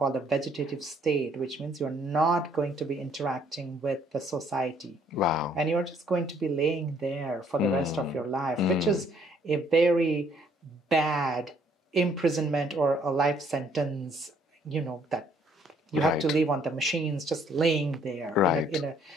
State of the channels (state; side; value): normal; both; correlation 0.64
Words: a vegetative state, which means you're not going to be interacting with the society. Wow. And you're just going to be laying there for the rest of your life, which is a very bad imprisonment or a life sentence, that you have to live on the machines, just laying there. Right.